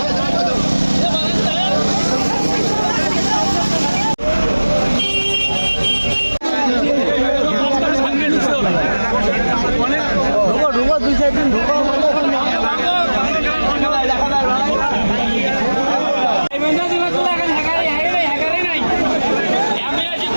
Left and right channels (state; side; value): inverted; both; correlation -1.00